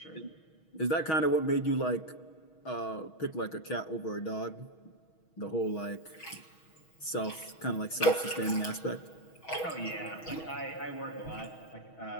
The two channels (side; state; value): right; late; 6.3 ms